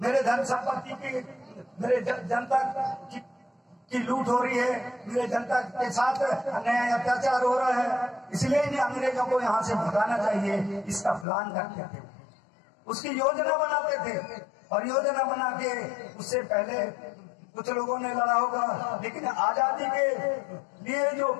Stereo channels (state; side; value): drops out; right; at 11.2 s